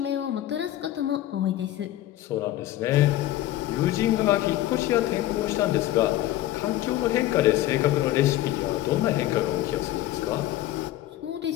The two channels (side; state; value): right; quieter; 14.4 dB